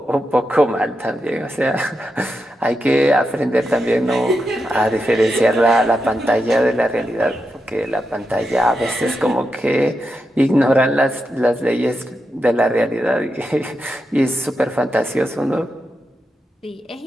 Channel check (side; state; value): both; normal; correlation 0.87